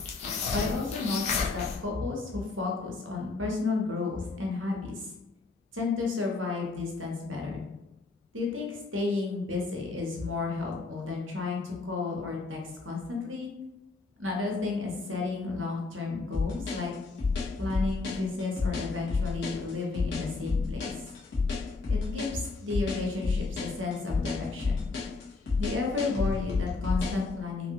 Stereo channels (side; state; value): right; quieter; 3.7 dB